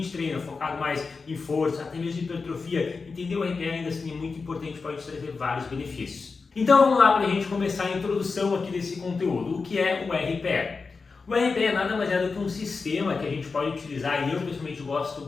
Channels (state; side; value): quieter; right; 4.5 dB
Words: treina focado mais em força, até mesmo em hipertrofia, entender o RPE ainda assim é muito importante, pode trazer vários benefícios. Então vamos lá para a gente começar a introdução aqui desse conteúdo. O que é o RPE? O RPE nada mais é do que um sistema que a gente pode utilizar, e eu pessoalmente gosto